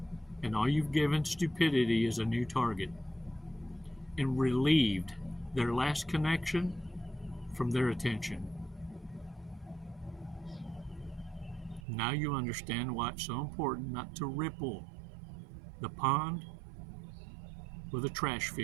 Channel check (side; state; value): left; drops out; at 11.8 s